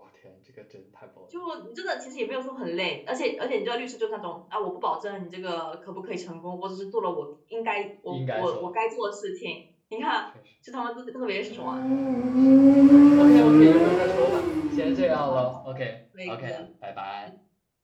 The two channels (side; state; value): both; identical; correlation 1.00